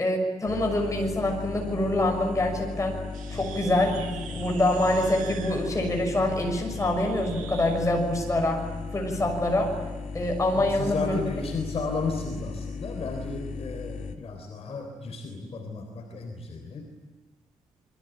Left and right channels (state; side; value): normal; both; correlation 0.76